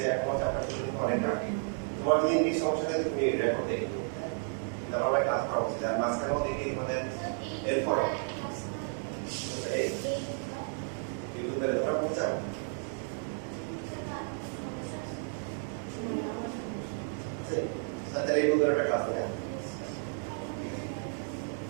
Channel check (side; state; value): left; silent; 56 dB below the other